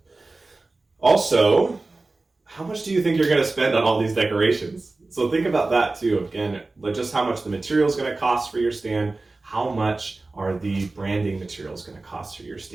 Also, how much do you think you're going to spend on all these decorations? So think about that, too. Again, like just how much the material is going to cost for your stand. How much are the branding materials going to cost for your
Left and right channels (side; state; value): left; quieter; 3.3 dB